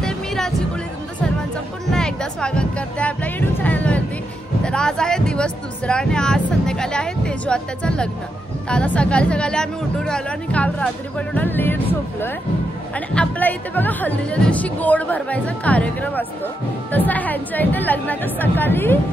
मी राजी कोळी तुमचं सर्वांचं पुन्हा एकदा स्वागत करते आपल्या यूट्यूब चॅनलवरती। तर आज आहे दिवस दुसरा आणि आज संध्याकाळी आहे तेजू आत्याचं लग्न। तर आता सकाळी आम्ही उठून आलो आणि काल रात्री पण एवढा लेट झोपलोय आणि आपल्या इथे बघा हल्दीच्या दिवशी गोड भरवायचा कार्यक्रम असतो, तसा ह्यांच्या इथे लग्नाच्या सकाळी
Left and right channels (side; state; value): both; normal; correlation 0.84